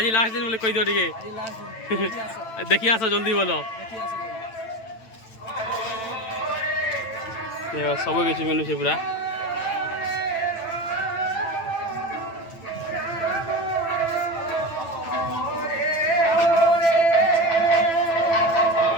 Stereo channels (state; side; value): late; right; 9.0 ms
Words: লাস্ট দিন বলে কই দিও টিকে দেখি আসো জলদি বলো সবু কিছু মিলুছে পুরা